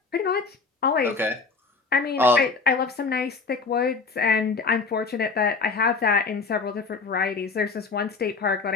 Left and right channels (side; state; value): right; quieter; 4.6 dB